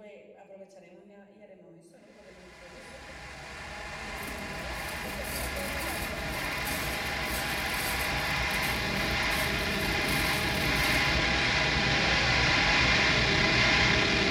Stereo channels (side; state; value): both; identical; correlation 1.00